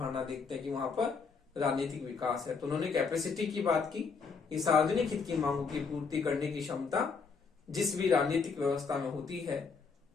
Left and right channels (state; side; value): quieter; right; 5.2 dB